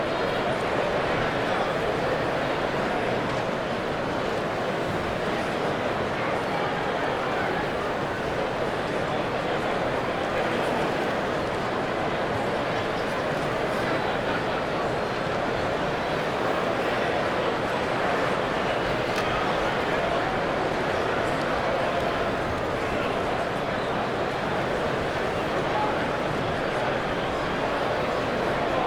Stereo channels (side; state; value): both; identical; correlation 1.00